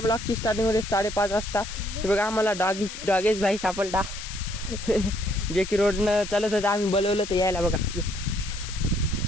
स्टार्टिंग होते 5:30 वाजता. हे बघा आम्हाला डॉगेज भाई सापडला जे की रोडनं चालत होतं आम्ही बोलवलं तर यायला बघा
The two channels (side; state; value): left; noise; hiss, 10 dB below the sound